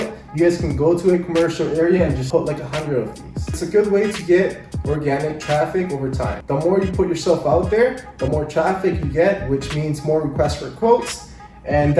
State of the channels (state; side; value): identical; both; correlation 1.00